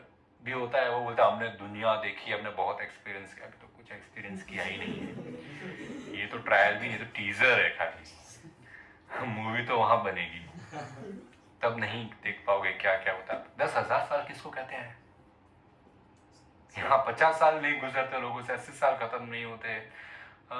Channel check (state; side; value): identical; both; correlation 1.00